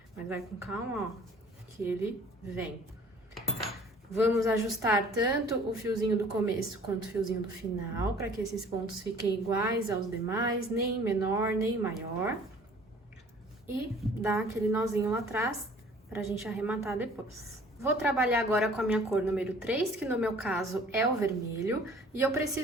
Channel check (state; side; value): normal; both; correlation 0.52